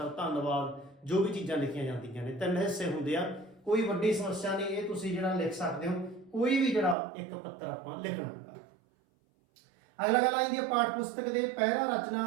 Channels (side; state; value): left; drops out; at 7.0 s